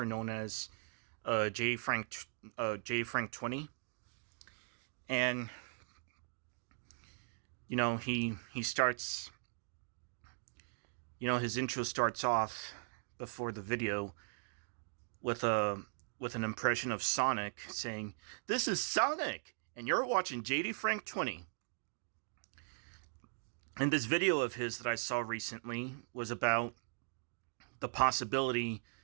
known as J Frank 20, and he starts his intro starts off before the video with a with an impression of Sonic saying, "This is Sonic, and you're watching JD Frank 20." And this video of his that I saw recently was about the possibility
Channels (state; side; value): silent; left; digital silence